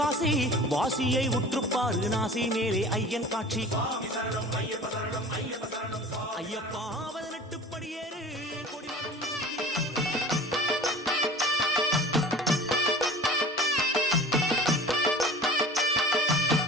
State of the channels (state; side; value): normal; both; correlation 0.41